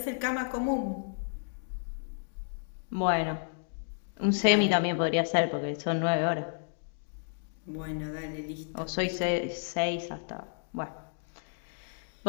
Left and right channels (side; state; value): right; silent; digital silence